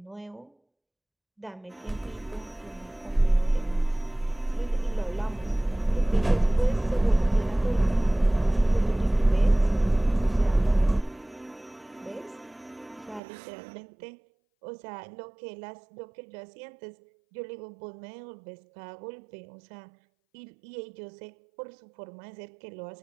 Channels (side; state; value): left; drops out; at 13.2 s